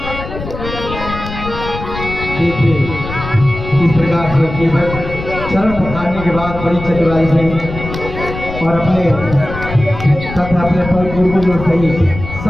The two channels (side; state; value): left; noise; rumble, 9 dB below the sound